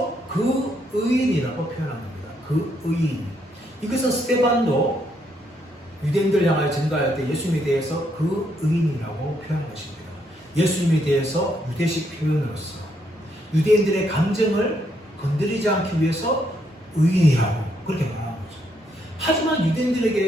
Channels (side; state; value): both; normal; correlation 0.74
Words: 그 의인이라고 표현합니다. 그 의인. 이것은 스데반도 유대인들 향하여 증거할 때 예수님에 대해서 그 의인이라고 표현한 것입니다. 예수님에 대해서 유대식 표현으로서 유대인들의 감정을 건드리지 않기 위해서 의인이라고 그렇게 말하는 거죠. 하지만